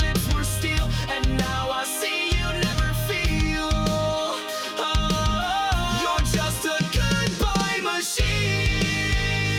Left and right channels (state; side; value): identical; both; correlation 1.00